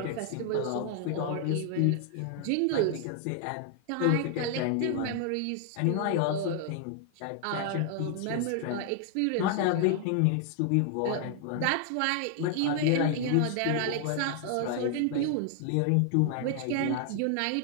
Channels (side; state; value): both; different; correlation 0.00